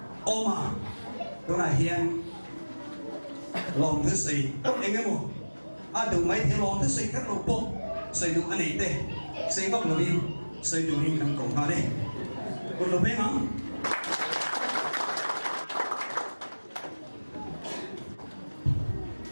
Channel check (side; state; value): both; inverted; correlation -1.00